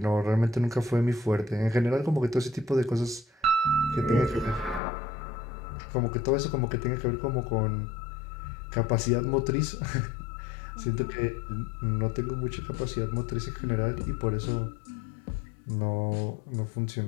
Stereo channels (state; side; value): drops out; right; at 4.8 s